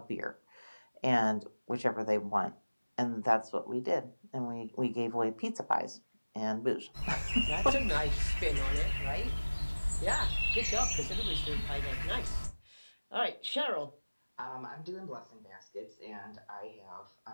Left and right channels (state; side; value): inverted; both; correlation -1.00